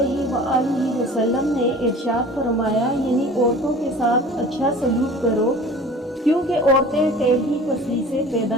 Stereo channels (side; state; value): both; normal; correlation 0.43